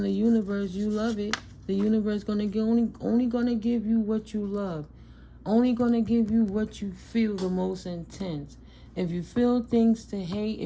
the universe you love it, the universe gonna give, only gonna give you what you love. Only gonna give you what you feel the most intense. If you feel things to hate,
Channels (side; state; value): both; identical; correlation 1.00